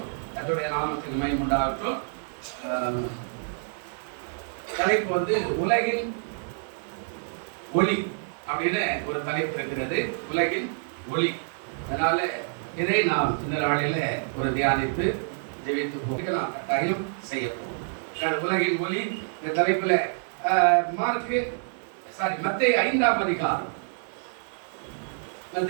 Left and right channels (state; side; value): silent; left; 60 dB below the other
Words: அதனுடைய நாமத்துக்கு மகிமை உண்டாகட்டும். தலைப்பு உலகின் ஒளி அப்படின்னு ஒரு தலைப்பு இருக்கிறது, உலகின் ஒளி. அதனால இதை நாம் இந்த நாளில ஒரு தியானித்து ஜெபித்து போக நாம் கட்டாயம் செய்ய போகிறோம். உலகின் ஒளி இந்த தலைப்புல மத்தேயு 5ஆம் அதிகாரம்